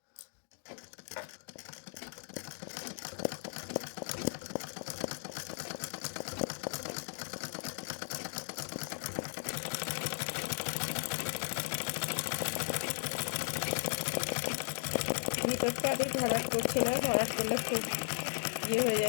ভিতরটা আমি ভরাট করছি না, ভরাট করলে খুব হয়ে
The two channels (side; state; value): right; silent; digital silence